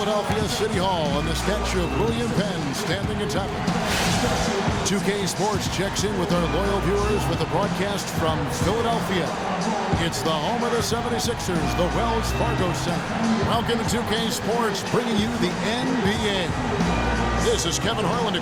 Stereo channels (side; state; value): both; identical; correlation 1.00